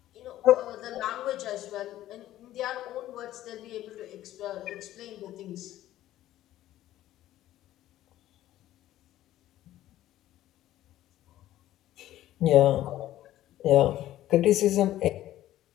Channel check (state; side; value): quieter; right; 13.8 dB